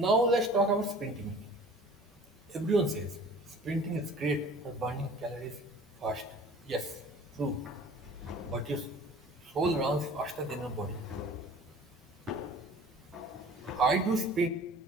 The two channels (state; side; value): normal; both; correlation 0.46